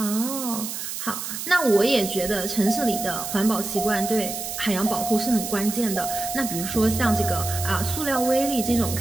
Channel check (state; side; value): noise; right; hiss, 6 dB below the sound